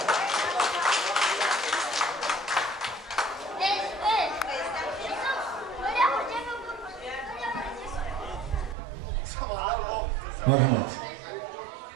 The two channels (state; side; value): drops out; left; at 8.8 s